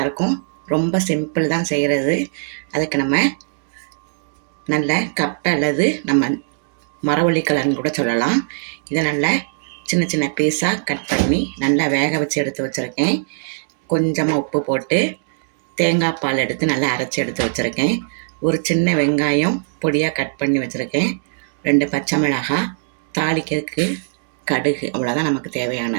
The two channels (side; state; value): left; silent; digital silence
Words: இருக்கும். ரொம்ப சிம்பிள் தான் செய்கிறது. அதுக்கு நம்ம நல்ல கப்பை அல்லது நம்ம மரவள்ளிக்கிழங்கு கூட சொல்லலாம். இதை நல்லா சின்ன சின்ன பீஸாக கட் பண்ணி நல்லா வேக வச்சு எடுத்து வச்சுருக்கேன். கொஞ்சமாக உப்பு போட்டு தேங்காய் பால் எடுத்து நல்லா அரைச்சி எடுத்து வச்சுருக்கேன். ஒரு சின்ன வெங்காயம் பொடியாக கட் பண்ணி வச்சுருக்கேன். 2 பச்சை மிளகாய், தாளிக்கிறதுக்கு கடுகு, அவ்வளோதான் நமக்கு